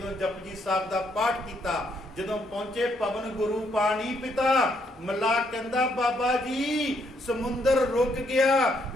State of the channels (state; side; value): normal; both; correlation 0.73